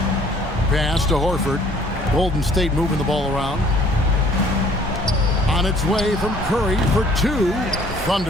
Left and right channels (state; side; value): normal; both; correlation 0.57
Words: Pass to Horford. Golden State moving the ball around. On its way from Curry for 2.